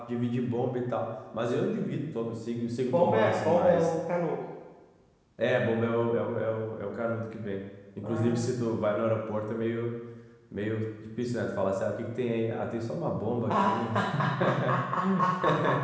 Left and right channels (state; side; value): identical; both; correlation 1.00